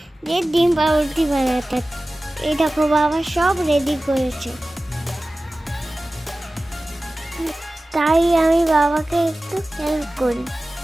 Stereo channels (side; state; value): both; normal; correlation 0.96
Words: যে ডিম পাউরুটি বানাতে। এই দেখো বাবা সব রেডি করেছে, তাই আমি বাবাকে একটু হেল্প করি।